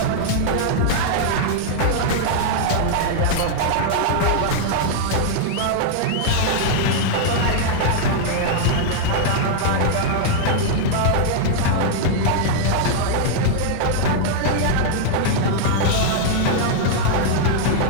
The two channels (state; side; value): different; both; correlation -0.01